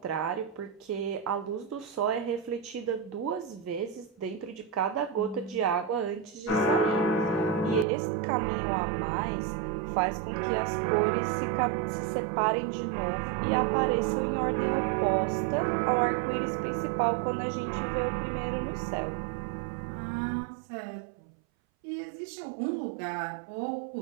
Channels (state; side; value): drops out; left; at 7.9 s